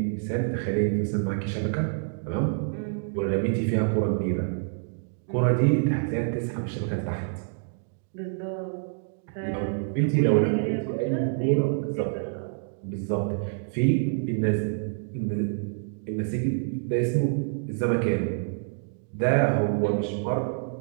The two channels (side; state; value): left; silent; digital silence